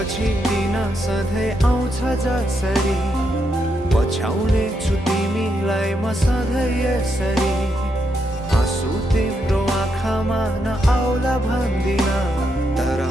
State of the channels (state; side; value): normal; both; correlation 0.81